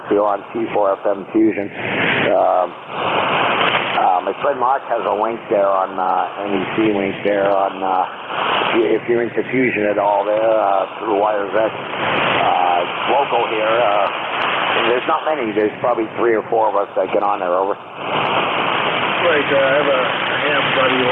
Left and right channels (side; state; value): both; identical; correlation 1.00